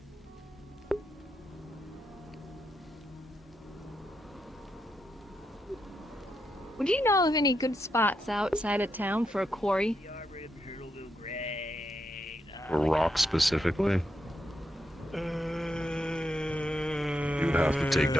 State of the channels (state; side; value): normal; both; correlation 0.83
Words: Would you know of any good spots outside of town for a quarry? Or rock specifically. You'd have to take